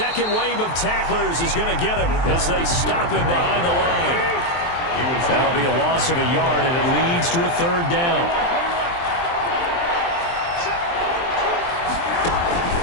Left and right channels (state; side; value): late; right; 23 ms